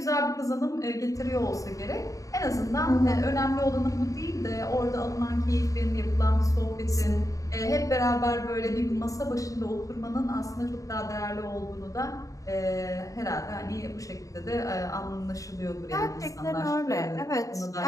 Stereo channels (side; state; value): right; late; 0.16 ms